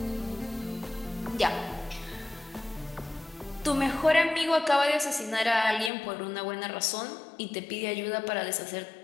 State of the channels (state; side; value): drops out; right; at 5.9 s